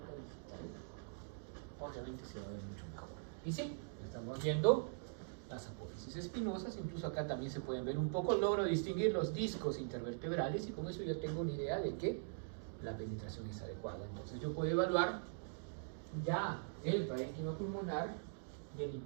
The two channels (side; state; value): left; silent; digital silence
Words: digital, obviamente se va a ver mucho mejor. Y sí, estamos viendo las apófisis espinosas, incluso acá también se pueden ver un poco, logro distinguir los discos intervertebrales y con eso ya tengo una idea de que la penetración es adecuada. Entonces yo puedo evaluar ya el parénquima pulmonar y el